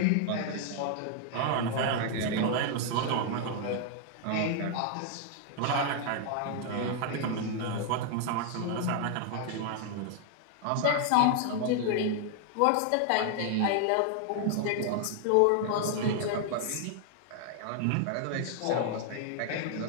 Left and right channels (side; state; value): both; different; correlation 0.00